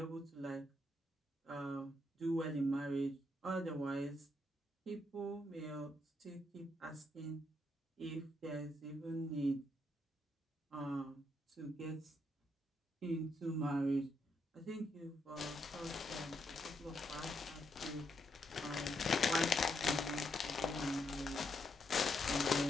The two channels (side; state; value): both; normal; correlation 0.78